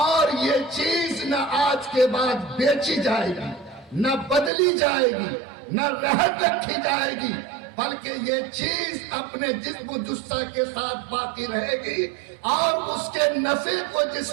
یہ چیز نہ آج کے بعد بیچی جائے گی، نہ بدلی جائے گی، نہ رہن رکھی جائے گی، بلکہ یہ چیز اپنے جسم و جثہ کے ساتھ باقی رہے گی، اور اس کے نفع کو جس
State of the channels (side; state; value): left; drops out; at 4.5 s